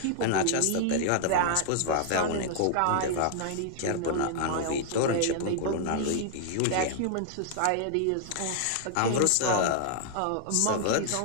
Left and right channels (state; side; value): different; both; correlation -0.01